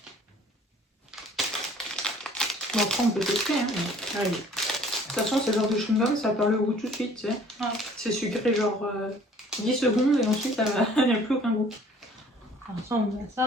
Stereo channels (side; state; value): both; normal; correlation 0.53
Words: Bon, après, on peut tester. Hein. Allez. De toute façon, ce genre de chewing-gum, ça perd le goût tout de suite. Tu sais. Ah. C'est sucré, genre 10 secondes, et ensuite, il n'y a plus aucun goût. Ça ressemble à